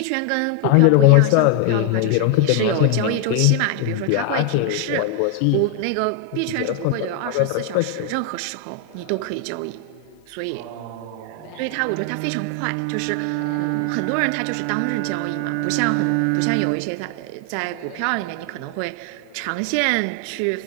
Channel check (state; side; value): different; both; correlation 0.01